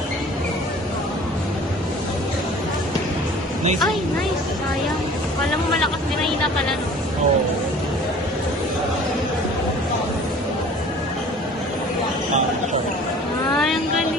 Nice. Ay, nice. Sayang. Wala mo malakas din na pala, no? Oo. Ay, ang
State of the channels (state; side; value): normal; both; correlation 0.47